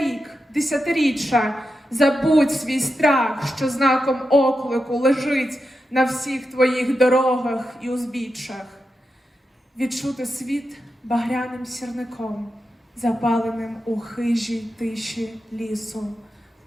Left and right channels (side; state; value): both; normal; correlation 0.89